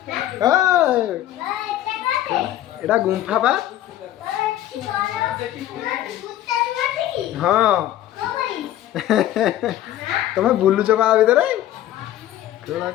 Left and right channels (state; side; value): quieter; right; 13.0 dB